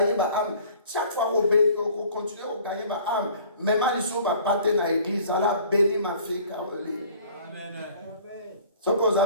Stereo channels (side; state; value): both; inverted; correlation -0.50